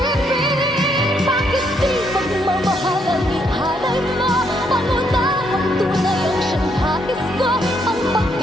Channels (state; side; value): normal; both; correlation 0.73